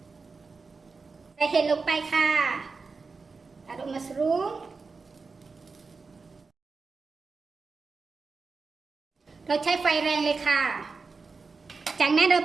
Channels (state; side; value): quieter; left; 4.4 dB